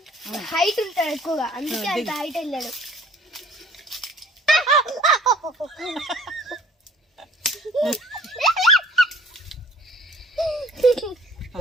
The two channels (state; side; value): normal; both; correlation 0.52